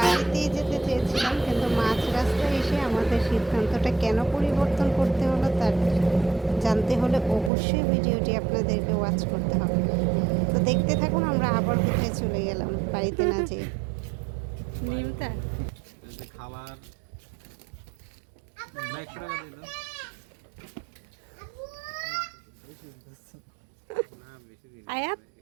যেতে চেয়েছিলাম, কিন্তু মাঝ রাস্তায় এসে আমাদের সিদ্ধান্তটা কেন পরিবর্তন করতে হলো তার জানতে হলে অবশ্যই ভিডিওটি আপনাদেরকে ওয়াচ করতে হবে। তো দেখতে থাকুন আমরা আবার কোথায় চলে গেলাম বাড়িতে না যেয়ে। নিমতা খাবার আয়াত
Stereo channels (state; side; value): drops out; left; at 7.5 s